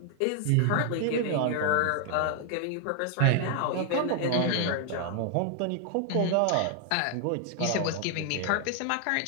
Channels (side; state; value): both; different; correlation 0.00